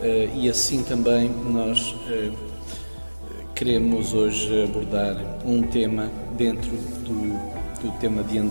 e assim também nós queremos hoje abordar um tema dentro do tema de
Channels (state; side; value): inverted; both; correlation -1.00